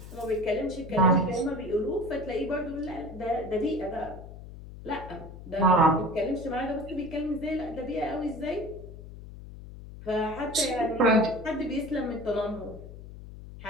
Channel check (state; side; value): noise; left; hum, 14 dB below the sound